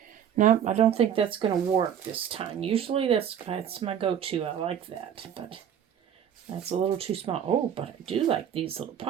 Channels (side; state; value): left; quieter; 9.0 dB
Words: No, I don't think that's going to work this time. Usually that's my go-to. I like that, but that's a little too small. Oh, but I do like these little